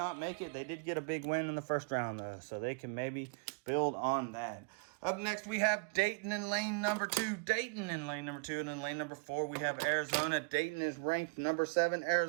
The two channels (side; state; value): left; quieter; 34.0 dB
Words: make it. They did get a big win in the 1st round, though, so they can maybe build on that. Up next, we have Dayton in lane number 2. Dayton in lane number 2, and in lane number 4, we have Arizona. Dayton is ranked number 7.